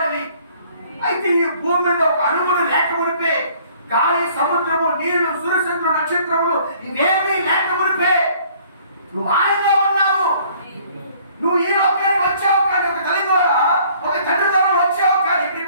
అయితే ఈ భూమి మీద ఒక అణువులు లేక మునిపే, గాలి, సముద్రము, నీరు, సూర్యచంద్రుడు, నక్షత్రములు ఇవేమీ లేక మునిపే నువ్వు ఆయనలో ఉన్నావు. నువ్వు ఈ లోకానికి వచ్చావు కానీ ఒక తల్లి ద్వారా ఒక తండ్రి ద్వారా వచ్చావు కానీ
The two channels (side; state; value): both; inverted; correlation -0.57